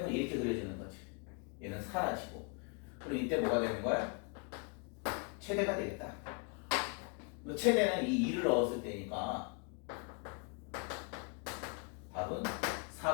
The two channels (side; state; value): right; quieter; 35.1 dB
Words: 이렇게 그려지는 거지. 얘는 사라지고. 그럼 이때 뭐가 되는 거야? 최대가 되겠다. 최대는 이 2를 넣었을 때니까 답은